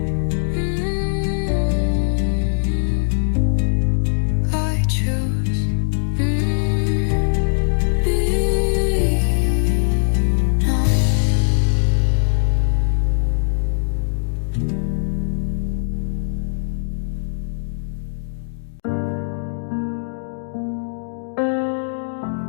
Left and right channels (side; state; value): right; silent; digital silence